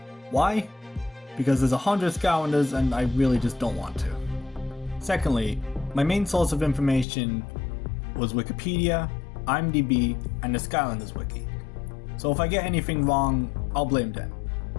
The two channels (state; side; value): drops out; right; at 7.1 s